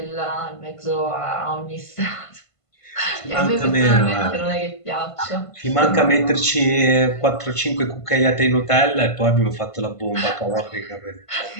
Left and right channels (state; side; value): late; right; 1.5 ms